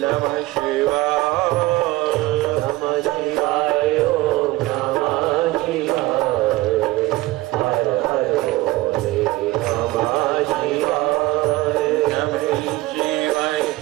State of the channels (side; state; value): left; quieter; 18.7 dB